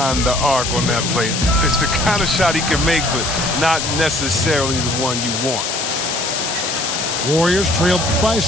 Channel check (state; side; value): noise; left; hiss, 3 dB below the sound